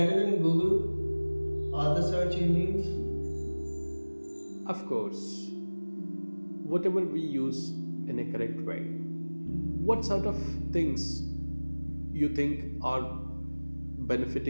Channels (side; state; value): both; inverted; correlation -1.00